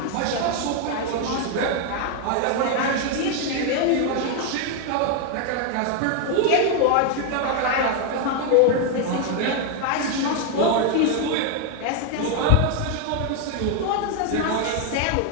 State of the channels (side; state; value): both; different; correlation 0.01